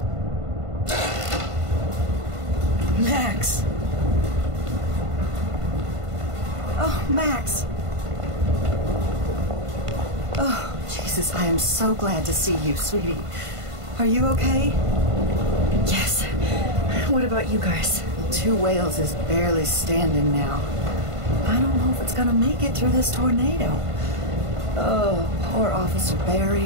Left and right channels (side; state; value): left; late; 1.5 ms